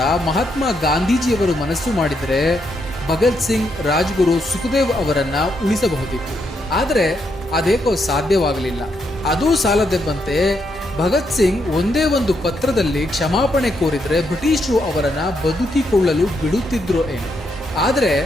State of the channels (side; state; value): both; normal; correlation 0.78